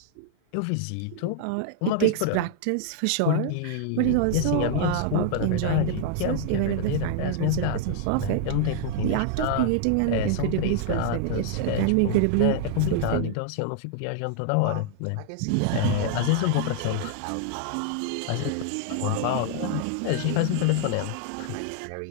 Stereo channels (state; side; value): different; both; correlation -0.01